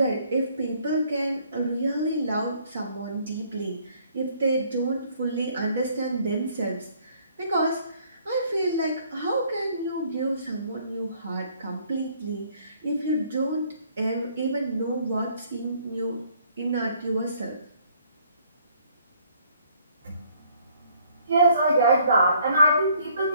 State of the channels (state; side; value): inverted; both; correlation -0.63